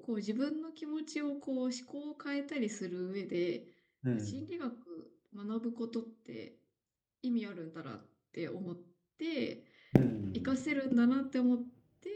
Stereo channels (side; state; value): both; identical; correlation 1.00